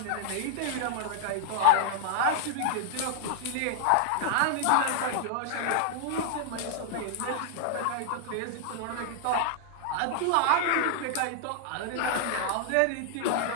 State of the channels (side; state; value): both; different; correlation 0.00